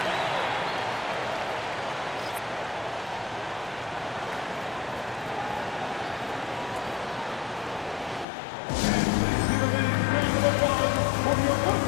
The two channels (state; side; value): drops out; right; at 8.2 s